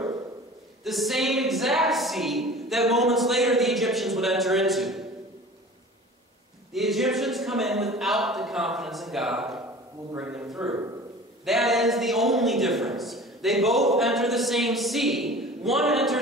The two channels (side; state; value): both; normal; correlation 0.41